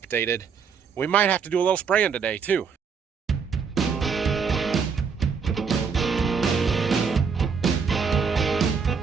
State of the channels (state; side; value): quieter; left; 6.0 dB